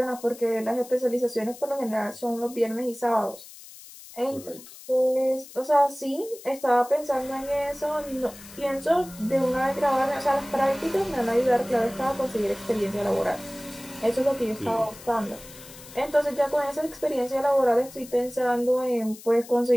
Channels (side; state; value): left; noise; hiss, 18 dB below the sound